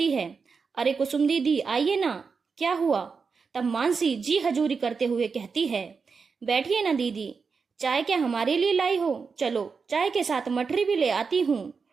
है। अरे कुसुम दीदी, आइए ना, क्या हुआ। तब मानसी जी हजूरी करते हुए कहती है, बैठिए ना दीदी, चाय क्या हमारे लिए लाई हो। चलो चाय के साथ मठरी भी ले आती हूँ,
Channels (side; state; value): left; quieter; 5.2 dB